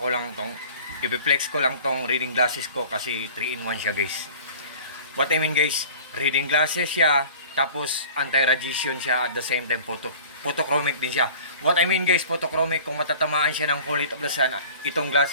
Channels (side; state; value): both; inverted; correlation -0.45